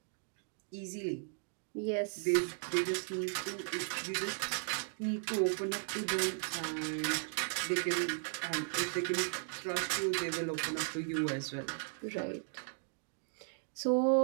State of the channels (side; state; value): left; silent; 54 dB below the other